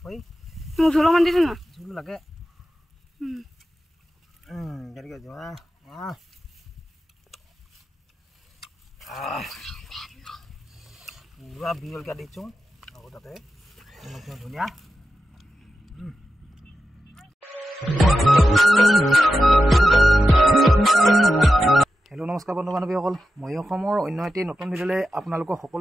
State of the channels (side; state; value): both; normal; correlation 0.91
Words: মোক ঝোল অকণমান দিছে না ঝোল লাগে কেনেকৈ যোৱা পুৰা বিয়লকৈ দিছোঁ আকৌ তাতে ধুনীয়া হেল্ল' নমস্কাৰ বন্ধু বান্ধৱীসকল মই অসমৰ অন্য এটি নতুন ভিডিঅ'লৈ আপোনালোকক